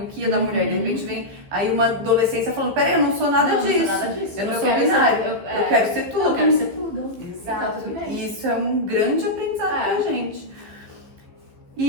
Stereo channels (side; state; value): left; late; 15 ms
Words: o que é da mulher. De repente vem aí uma adolescência falando, peraí, eu não sou nada disso. Não sou nada disso. Eu não sou binário. Eu quero ser tudo. Eu quero ser tudo. Exato. E isso é um grande aprendizado pra gente.